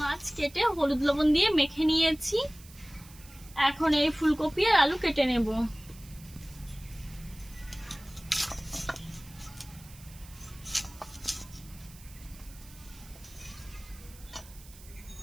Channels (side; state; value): right; noise; hiss, 21 dB below the sound